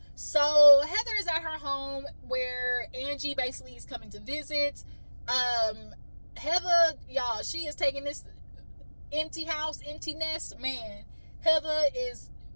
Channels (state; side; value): inverted; both; correlation -1.00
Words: So Heather is at her home where Angie basically is coming to visit. Heather, y'all, she is taking this empty house, empty nest, man. Heather is